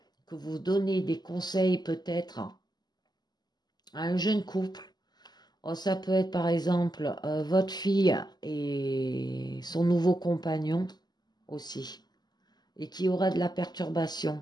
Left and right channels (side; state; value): right; late; 0.20 ms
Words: que vous donnez des conseils peut-être à un jeune couple. Ça peut être par exemple votre fille et son nouveau compagnon aussi, et qui aura de la